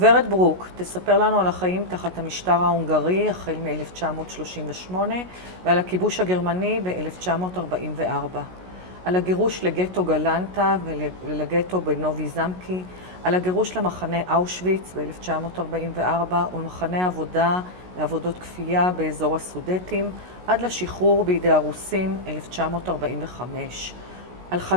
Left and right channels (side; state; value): left; late; 16 ms